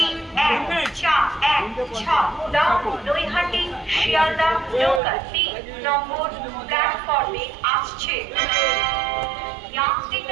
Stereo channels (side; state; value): left; drops out; at 5.0 s